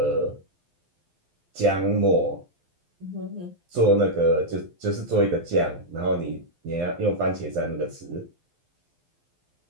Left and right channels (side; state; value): left; late; 12 ms